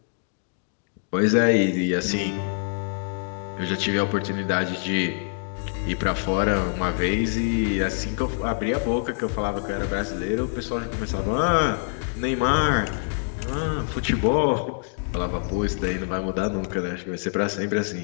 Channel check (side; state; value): right; silent; digital silence